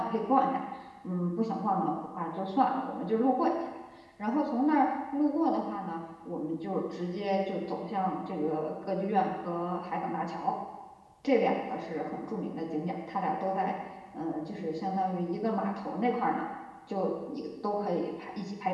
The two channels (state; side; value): identical; both; correlation 1.00